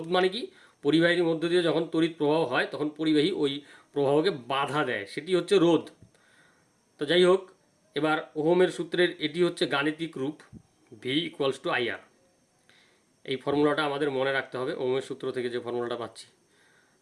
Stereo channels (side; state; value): both; identical; correlation 1.00